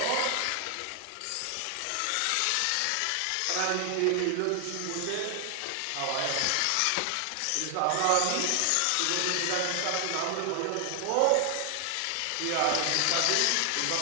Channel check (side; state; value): both; different; correlation 0.00